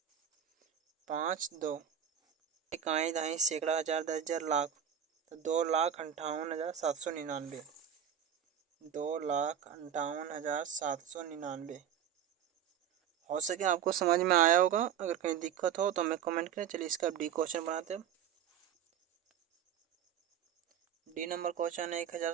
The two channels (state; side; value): quieter; left; 9.1 dB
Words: 5 2, इकाई दहाई सैकड़ा हज़ार 10,000 लाख, तो 2,58,799, 2,58,799। हो सके आपको समझ में आया होगा, अगर कहीं दिक्कत हो तो हमें कमेंट करें। चलिए इसका डी क्वेश्चन बनाते हैं। डी नंबर क्वेश्चन है